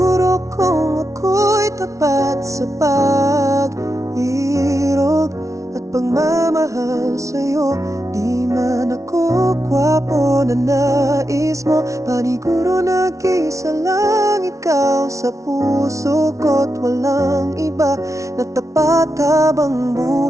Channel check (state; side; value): late; left; 0.15 ms